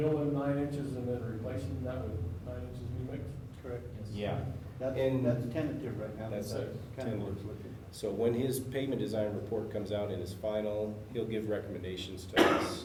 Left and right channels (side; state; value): both; identical; correlation 1.00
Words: 9 inches and then replacing that with 9 inches new mix? Correct. Yeah. That's, that's tentative right now, but That's that's a- kind of where it's looking. So when his pavement design report comes out in his final, he'll give recommendations to